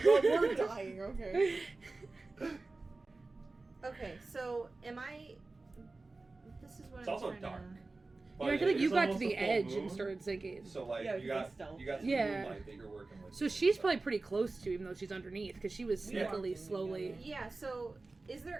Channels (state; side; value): quieter; left; 3.4 dB